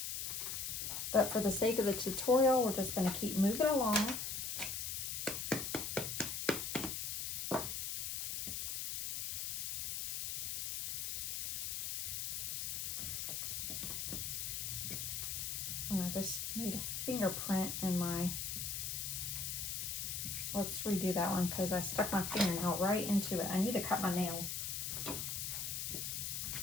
But for the sake of the tutorial, we're just going to keep moving along. And I just made a fingerprint in my, let's redo that one because I stuck my fingernail right into it. I need to cut my nails.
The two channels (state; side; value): noise; left; hiss, 2 dB below the sound